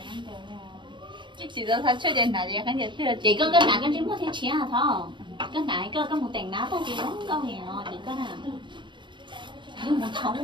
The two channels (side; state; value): left; late; 0.23 ms